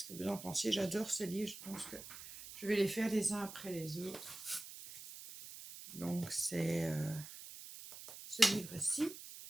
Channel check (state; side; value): noise; right; hiss, 13 dB below the sound